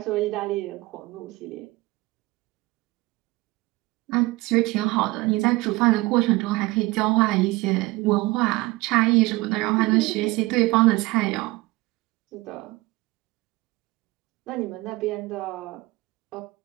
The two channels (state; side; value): quieter; left; 21.7 dB